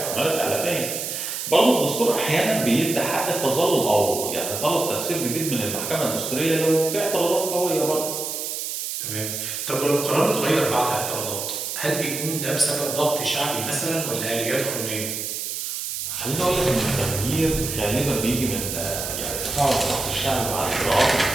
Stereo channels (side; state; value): right; noise; hiss, 4 dB below the sound